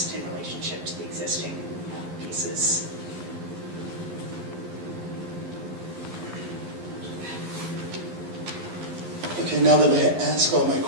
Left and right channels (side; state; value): left; late; 11 ms